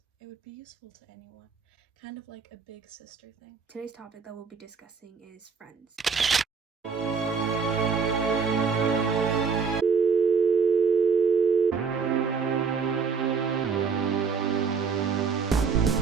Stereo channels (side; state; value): left; quieter; 5.5 dB